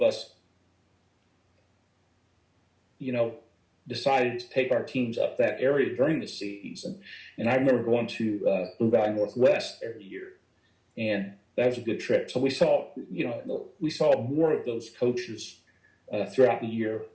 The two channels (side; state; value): both; identical; correlation 1.00